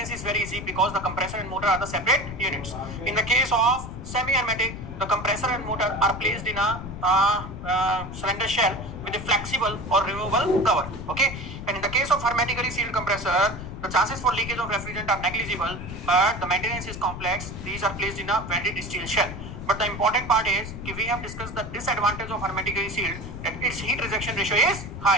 is very easy because the compressor and motor are the separate units. In the case of semi-hermetic, the compressor and motor are placed in a cylinder shell with a flexible or removable cover. Okay. And in the case of hermetically sealed compressor, the chances for leakage of refrigerant are negligible, but the maintenance is complex. These are placed in a welded steel shell. But the important part is we have discussed the disadvantage of hermetically sealed, that its heat rejection ratio is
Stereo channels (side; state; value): left; noise; rumble, 9 dB below the sound